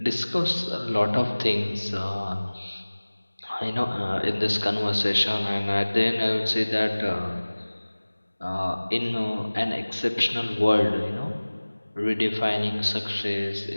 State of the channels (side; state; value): both; inverted; correlation -1.00